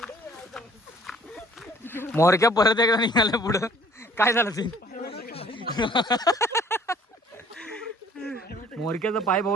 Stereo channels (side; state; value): both; normal; correlation 0.55